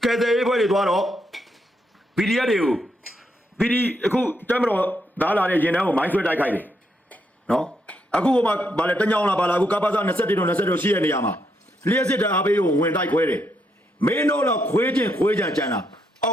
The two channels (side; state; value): both; normal; correlation 0.78